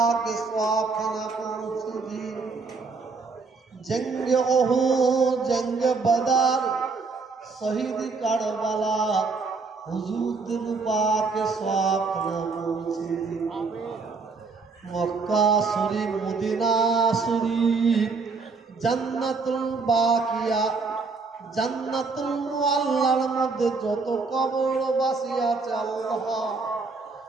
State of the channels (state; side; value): quieter; left; 4.3 dB